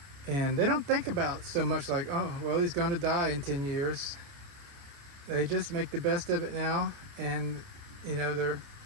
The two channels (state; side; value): late; left; 29 ms